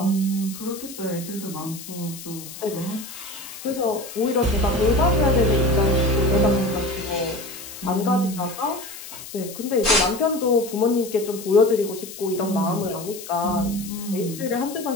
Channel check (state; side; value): noise; left; hiss, 13 dB below the sound